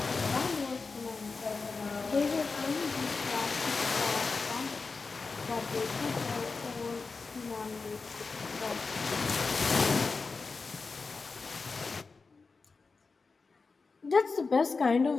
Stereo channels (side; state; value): right; quieter; 4.3 dB